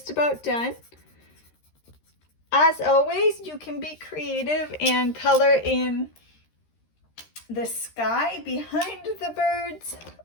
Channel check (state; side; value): late; right; 13 ms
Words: about done. As always, you can be creative and color in the sky behind the birds,